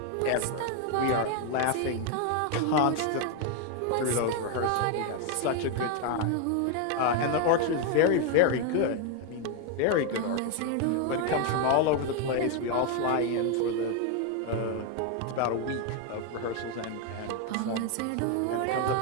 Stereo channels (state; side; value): different; both; correlation 0.01